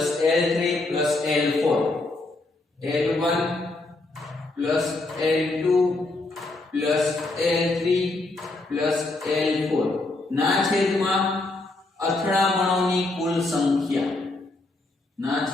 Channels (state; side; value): quieter; right; 3.0 dB